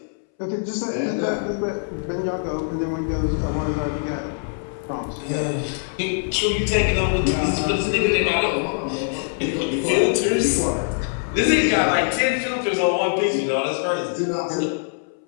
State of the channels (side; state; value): right; silent; 62 dB below the other